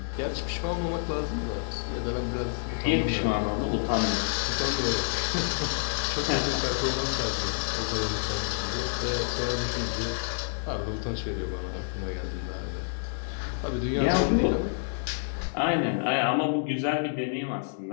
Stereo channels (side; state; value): right; silent; digital silence